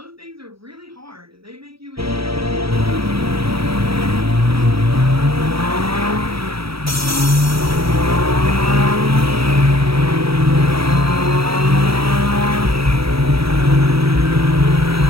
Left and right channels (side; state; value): left; late; 0.76 ms